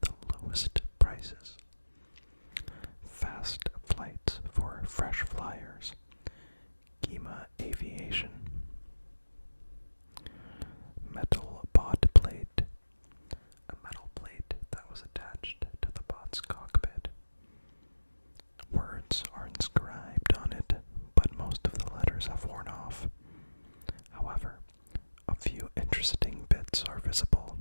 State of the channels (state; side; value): inverted; both; correlation -1.00